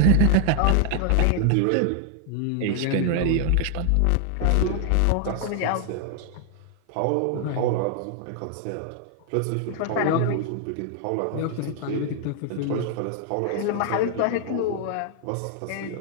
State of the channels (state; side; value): different; both; correlation 0.00